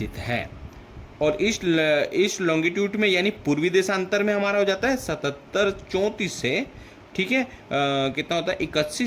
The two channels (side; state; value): both; identical; correlation 1.00